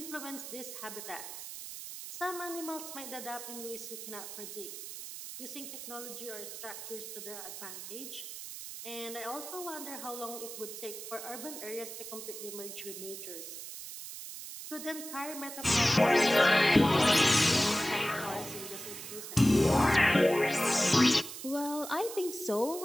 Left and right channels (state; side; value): noise; right; hiss, 10 dB below the sound